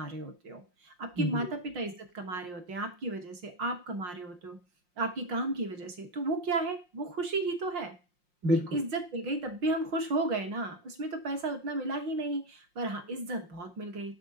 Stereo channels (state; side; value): late; left; 5.6 ms